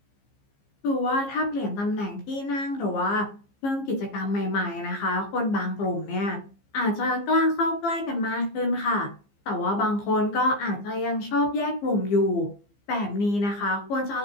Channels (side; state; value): right; late; 15 ms